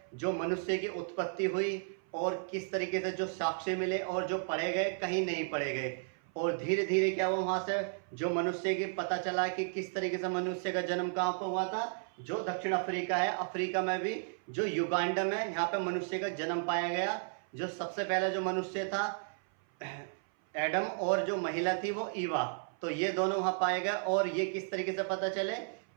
जो मनुष्य की उत्पत्ति हुई और किस तरीके से जो साक्ष्य मिले और जो पढ़े गए कहीं नहीं पढ़े गए और धीरे धीरे क्या हुआ वहाँ से जो मनुष्य की पता चला कि किस तरीके से मनुष्य का जन्म कहाँ पर हुआ था। जो दक्षिण अफ्रीका है, अफ्रीका में भी जो युगांडा में यहाँ पे मनुष्य का जन्म पाया गया। जो सबसे पहला जो मनुष्य था एडम और जो महिला थी वो ईवा, तो ये दोनों वहाँ पाए गए। और ये किस तरीके से पता चले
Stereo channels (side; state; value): left; silent; 55 dB below the other